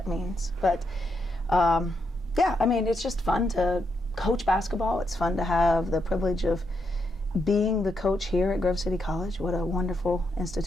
means. But, yeah, I mean, it's just fun to coach basketball. It's fun to have the privilege of being the coach here at Grove City College. What a wonderful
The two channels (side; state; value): both; normal; correlation 0.81